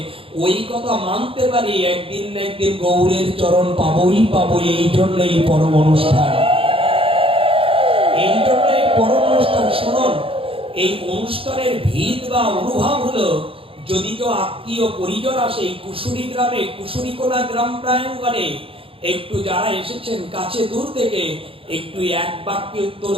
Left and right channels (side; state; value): left; late; 0.27 ms